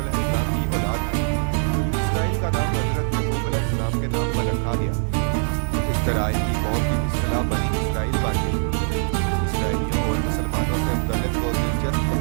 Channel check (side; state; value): left; silent; digital silence